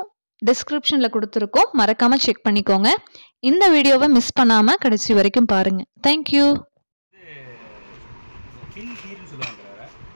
டிஸ்கிரிப்ஷனில் கொடுத்துருக்கோம், மறக்காமல் செக் பண்ணிக்கோங்க. இந்த வீடியோவை மிஸ் பண்ணாமல் கடைசி வரைக்கும் பாருங்கள். தேங்க்யூ. பின் ஹீல்னு சொல்லுவாங்க.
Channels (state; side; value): inverted; both; correlation -1.00